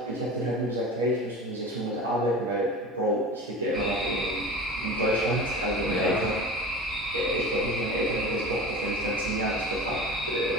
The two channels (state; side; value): normal; both; correlation 0.34